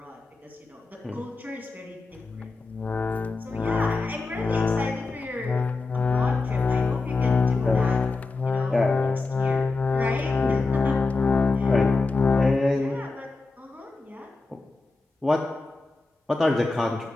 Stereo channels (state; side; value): quieter; right; 3.6 dB